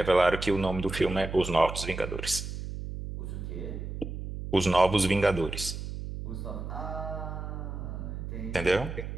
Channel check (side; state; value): right; noise; hum, 7 dB below the sound